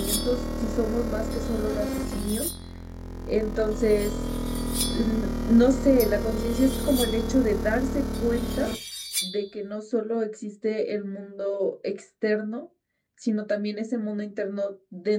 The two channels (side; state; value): both; identical; correlation 1.00